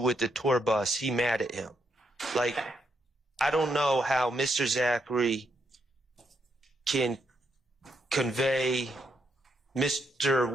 the tour bus, he mad at him. Like, I don't know how Mr. Zachary can convey Mr.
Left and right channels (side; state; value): both; normal; correlation 0.78